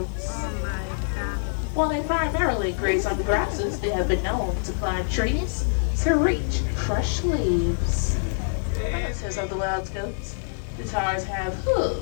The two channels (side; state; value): right; silent; digital silence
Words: While they primarily graze on grasses, they have been known to climb trees to reach fresh leaves. Relatives of the wild goats, the tars have